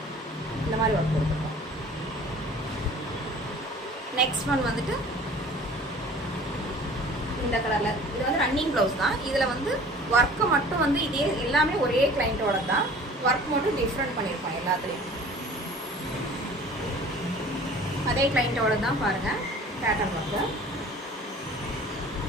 இந்த மாதிரி ஒர்க் கொடுத்துருக்கோம். நெக்ஸ்ட் ஒன் வந்துட்டு இந்த கலரில், இது வந்து ரன்னிங் ப்ளவுஸ் தான். இதில் வந்து ஒர்க்கை மட்டும் வந்து இதே எல்லாமே ஒரே கிளைண்ட்டோட தான், ஒர்க் மட்டும் டிஃப்ரெண்ட் பண்ணியிருப்பான் எல்லாத்துலேயும். அதே கிளைண்ட்டோட தான் பாருங்கள் பேட்டர்ன் ஒர்க்கு.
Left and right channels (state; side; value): normal; both; correlation 0.46